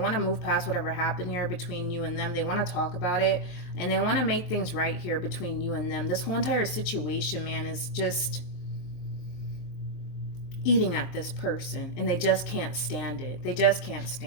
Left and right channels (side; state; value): right; late; 23 ms